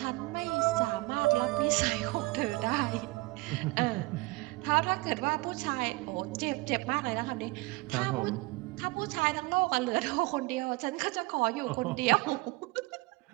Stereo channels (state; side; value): quieter; left; 22.8 dB